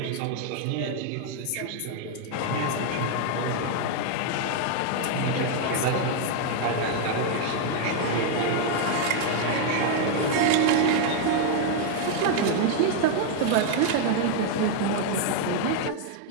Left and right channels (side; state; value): both; different; correlation 0.00